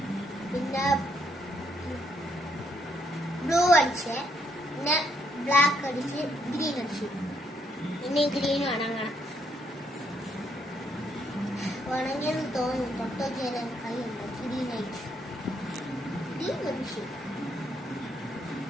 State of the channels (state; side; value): normal; both; correlation 0.73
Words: പിന്നെ ബ്ലൂ അടിച്ച് പിന്നെ ബ്ലാക്ക് അടിച്ച് ഗ്രീൻ അടിച്ച് പിന്നെ ഗ്രീൻ ഉണങ്ങണം. ഉണങ്ങിയെന്ന് തോന്നുന്നു. തൊട്ടൊക്കെ കൈയുണ്ട്. ഗ്രീൻ അടിച്ച് ഗ്രീൻ അടിച്ച്